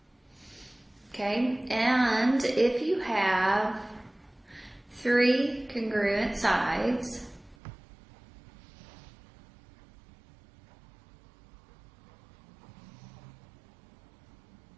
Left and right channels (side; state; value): left; drops out; at 7.6 s